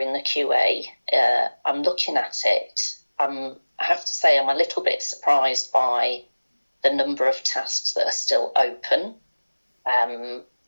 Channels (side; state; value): both; inverted; correlation -1.00